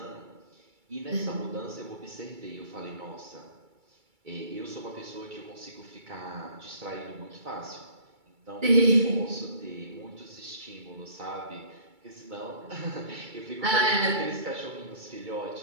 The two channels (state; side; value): late; left; 2.3 ms